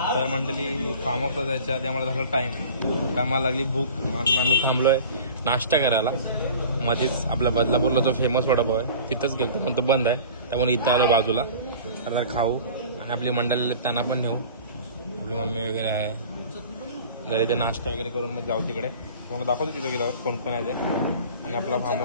तर मंडळी फार्म हाऊसला जायच्या आधी आम्हाला झाला टाइम, आम्हाला लागली भूक. आम्ही थांबलोय नाश्ता करायला. मध्येच आपल्या बदलापूरला जो फेमस वडापाव आहे तिथंच गेलो, पण तो बंद आहे. त्यामुळे इथं आलो बाजूला. तर खाऊ आणि आपली मंडळी त्यांना पण नेऊ. आपली मम्मी वगैरे आहे जर इथे नाश्ता वगैरे करून मग जाऊ तिकडे. तुम्हाला दाखवतो तिथं गेल्यावर कोण कोण आहे ते, आणि आपला फार्म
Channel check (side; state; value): both; inverted; correlation -0.42